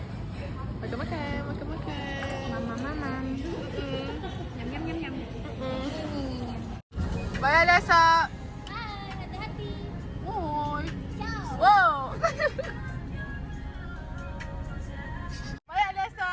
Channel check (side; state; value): both; identical; correlation 1.00